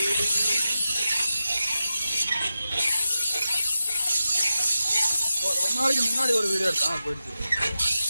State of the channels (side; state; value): both; inverted; correlation -0.91